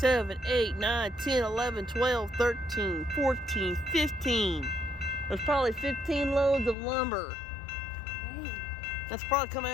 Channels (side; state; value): right; drops out; at 6.8 s